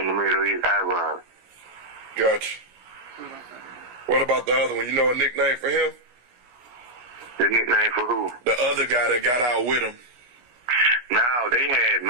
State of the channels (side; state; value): left; late; 16 ms